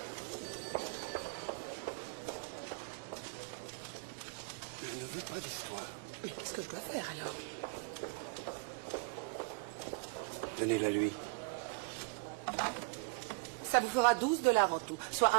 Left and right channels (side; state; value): left; quieter; 32.5 dB